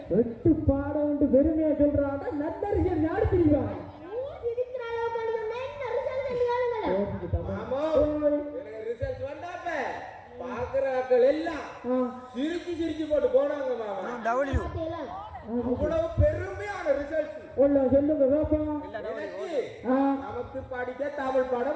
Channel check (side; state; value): both; identical; correlation 1.00